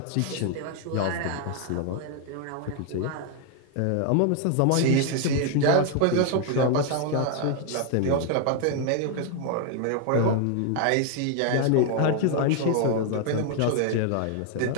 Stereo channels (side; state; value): both; different; correlation 0.01